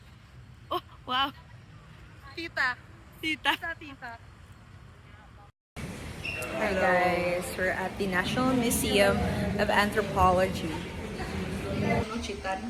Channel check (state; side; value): identical; both; correlation 1.00